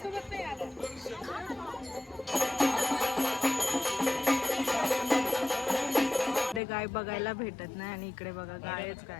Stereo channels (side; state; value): right; drops out; at 6.6 s